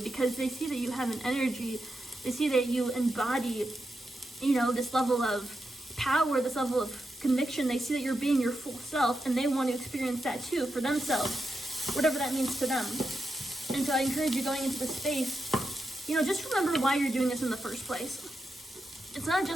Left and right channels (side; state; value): both; normal; correlation 0.87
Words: because they see that you have an energy, they see that you embody, this level of power, this level of conviction. They see that you're being your full self, and they want to experience that too for themselves, whatever that means to them. And so I encourage you, going into the space, just remember why you're doing this in the first place. It's not